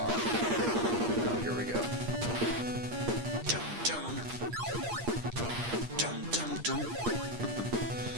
Oh, here we go. Dun dun. Dun dun dun.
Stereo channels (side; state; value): left; late; 9.8 ms